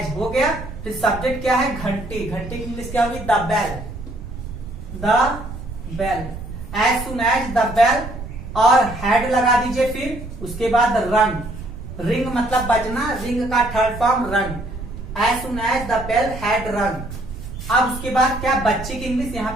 हो गया। फिर सब्जेक्ट क्या है? घंटी, घंटी की इंग्लिश क्या होगी? The bell, the bell, as soon as the bell. और हैड लगा दीजिए, फिर उसके बाद रंग, रिंग मतलब बजना, रिंग का third form rung, as soon as the bell had rung. अब उसके बाद क्या? बच्चे की इंग्लिश यहाँ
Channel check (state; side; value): noise; right; rumble, 10 dB below the sound